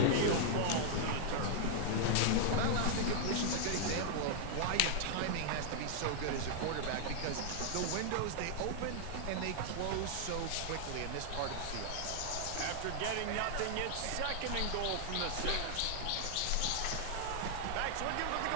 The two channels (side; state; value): both; different; correlation -0.01